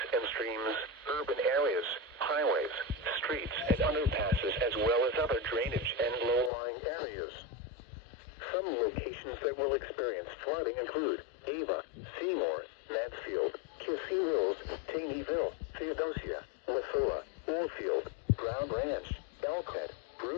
and streams, urban areas, highways, streets, and underpasses, as well as other drainage and low-lying areas. Some locations that will experience flooding include Ava, Seymour, Mansfield, Kissee Mills, Taneyville, Theodosia, Wasilla, Oldfield, Brown Ranch, Elkhead,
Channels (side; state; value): right; drops out; at 6.5 s